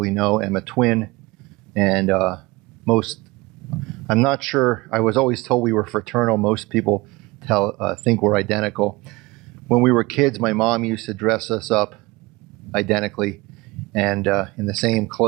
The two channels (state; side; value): quieter; left; 22.7 dB